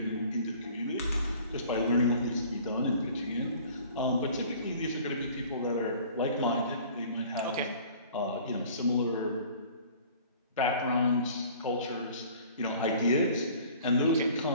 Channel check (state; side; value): inverted; both; correlation -0.49